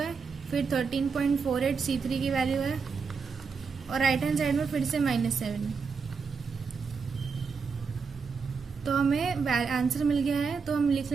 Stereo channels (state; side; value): quieter; left; 5.3 dB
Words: फिर 13.48 C3 की वैल्यू है, और राइट हैंड साइड में फिर से -7। तो हमें आंसर मिल गया है, तो हम लिख